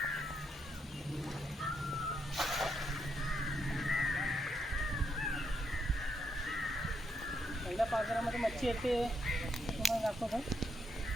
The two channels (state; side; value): normal; both; correlation 0.78